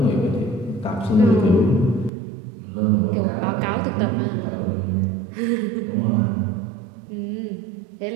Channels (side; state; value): left; drops out; at 2.1 s